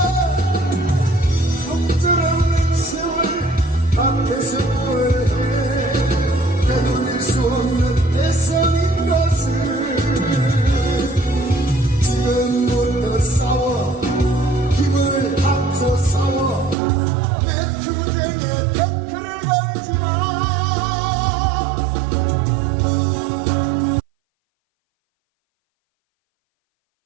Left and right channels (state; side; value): drops out; left; at 16.8 s